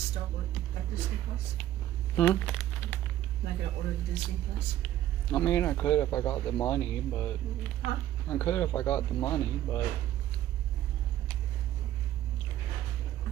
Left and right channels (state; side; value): quieter; left; 12.8 dB